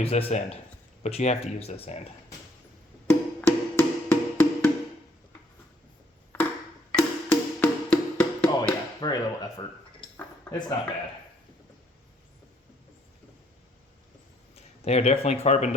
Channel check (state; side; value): normal; both; correlation 0.66